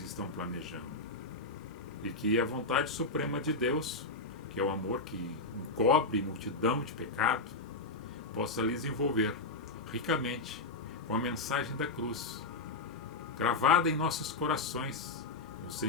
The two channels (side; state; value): right; quieter; 3.4 dB